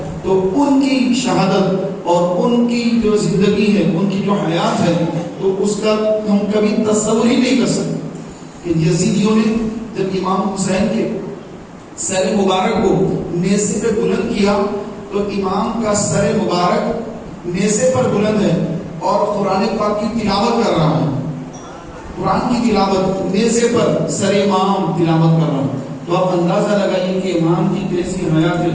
تو ان کی شہادت اور ان کی جو زندگی ہے, ان کی جو حیات ہے, تو اس کا ہم کبھی تصور ہی نہیں کر سکتے کہ یزیدیوں نے جب امام حسین کے سر مبارک کو نیزے پہ بلند کیا تو امام کا سر مبارک نیزے پر بلند ہے اور قرآن پاک کی تلاوت کر رہا ہے. قرآن کی تلاوت نیزے پر سر امام تلاوت کر رہا ہے. تو آپ اندازہ لگائیے کہ امام کی کیسی حیات ہے,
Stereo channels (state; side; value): identical; both; correlation 1.00